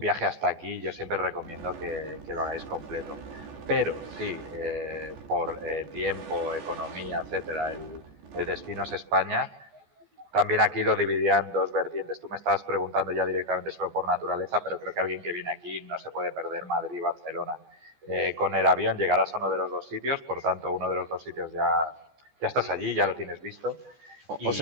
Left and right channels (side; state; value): left; late; 14 ms